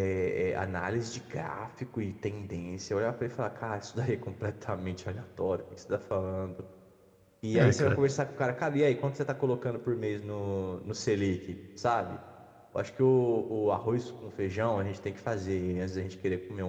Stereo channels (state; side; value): identical; both; correlation 1.00